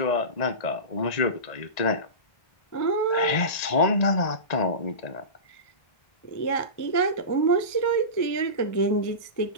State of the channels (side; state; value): right; late; 1.8 ms